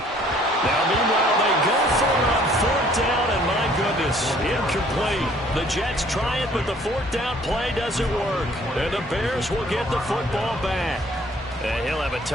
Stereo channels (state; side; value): normal; both; correlation 0.58